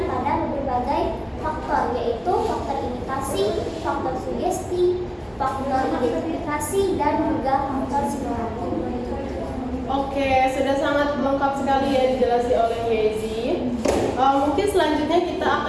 pada berbagai faktor, yaitu faktor imitasi, faktor sugesti, faktor identifikasi, dan juga faktor simulasi. Oke, sudah sangat lengkap sekali ya dijelaskan oleh Yezi. Mungkin selanjutnya kita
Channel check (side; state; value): both; identical; correlation 1.00